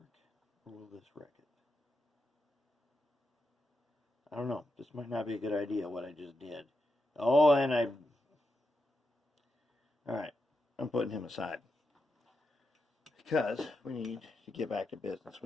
or will this wreck it? I don't know. This might not be a good idea, what I just did. Oh, and I... Alright, I'm putting him aside. Because we need to get back to business.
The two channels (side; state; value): both; normal; correlation 0.85